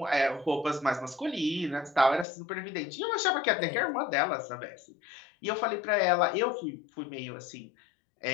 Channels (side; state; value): right; drops out; at 2.2 s